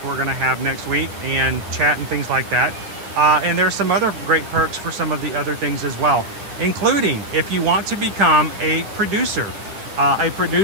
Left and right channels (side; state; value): left; late; 9.6 ms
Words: we're going to have next week and chat and things like that. And there's some other great perks for some of the other things as well, including if you want to become a producer. A